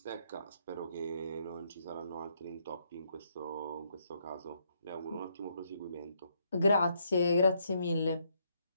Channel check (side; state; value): both; inverted; correlation -0.74